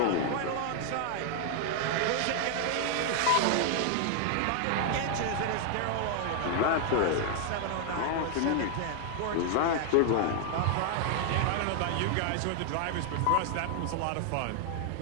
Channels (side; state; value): both; different; correlation 0.00